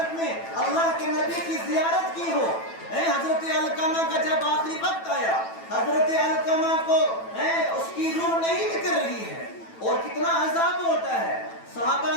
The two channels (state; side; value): late; right; 9.0 ms